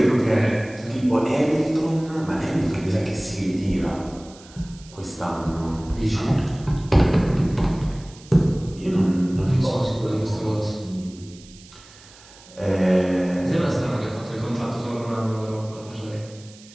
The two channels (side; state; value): right; noise; hiss, 22 dB below the sound